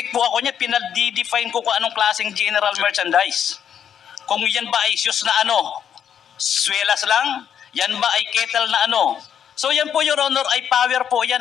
po ako niya, pinag-define ko kung anong klaseng general merchandise. Kung yan ba ay shoes na swelas lang, yan ba ay kettle na So yan po, Your Honor, ay power po yan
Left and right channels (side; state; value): right; quieter; 8.7 dB